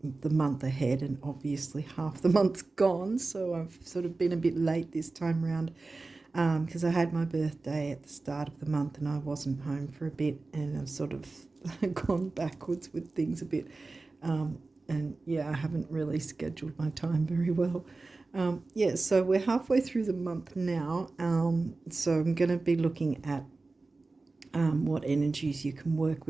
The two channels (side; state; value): left; quieter; 3.5 dB